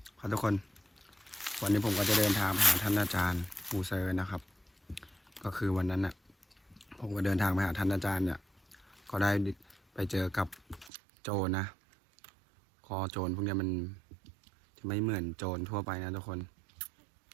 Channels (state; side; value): drops out; left; at 10.9 s